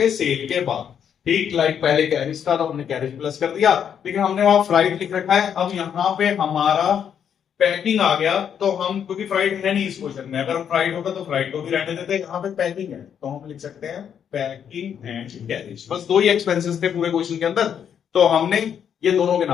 सेल के बाद, ठीक। लाइक पहले कैरेज था तो हमने कैरेज प्लस कर दिया, लेकिन हमने वहां फ्राइट लिख रखा है। अब यहाँ पे हमारा पैकिंग आ गया, तो हम, क्योंकि फ्राइट है नहीं इस क्वेश्चन में, अगर फ्राइट होगा तो फ्राइट को भी रहने देते हैं। यहाँ पे पैकिंग है तो हम लिख सकते हैं पैकिंग एंड कैरेज। बस दो ही एक्सपेंसेस थे पूरे क्वेश्चन के अंदर, तो हमने ये दोनों के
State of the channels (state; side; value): quieter; right; 8.3 dB